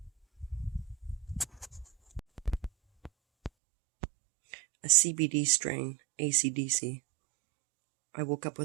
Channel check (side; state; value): left; drops out; at 3.5 s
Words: A CBD strain, AC/DC. I woke up